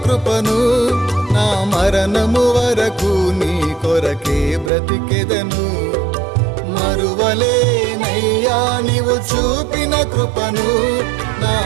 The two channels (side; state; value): left; drops out; at 4.7 s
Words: కృపను, నా మరణము వరకు నీ కొరకే బ్రతికెదను. మరువలేనయ్యా నీవు చూపిన కృపను, నా